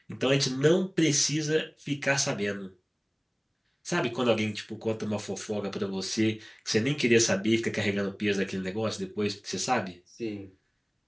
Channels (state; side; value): identical; both; correlation 1.00